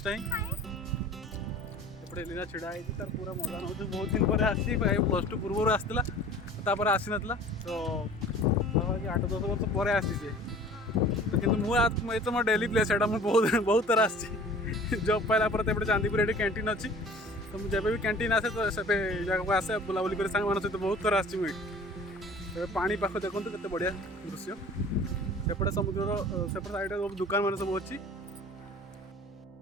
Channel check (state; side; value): normal; both; correlation 0.46